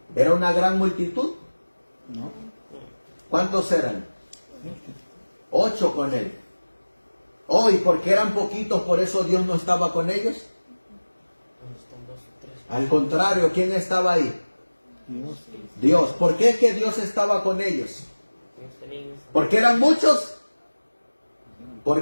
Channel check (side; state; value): both; inverted; correlation -1.00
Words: ¿Era una gran multitud? No. ¿Cuántos eran? 8 con él. Oh, y porque eran poquitos, por eso Dios no estaba con ellos. Al contrario, ¿quién estaba ahí? Dios. Dios. ¿Por qué es que Dios estaba con ellos? ¿Porque eran muchos? ¿Por